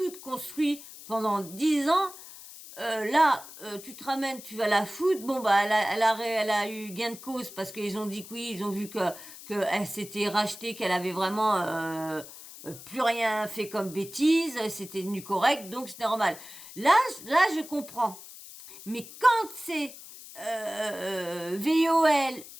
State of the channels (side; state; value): left; noise; hiss, 16 dB below the sound